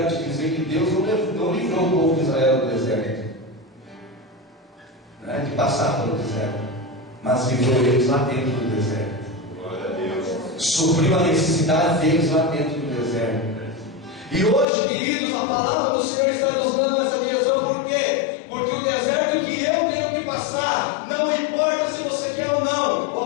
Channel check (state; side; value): drops out; right; at 14.7 s